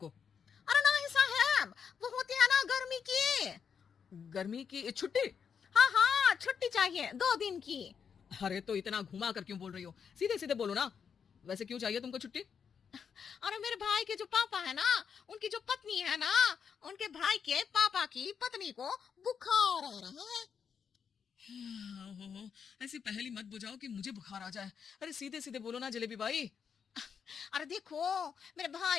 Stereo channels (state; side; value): quieter; right; 6.9 dB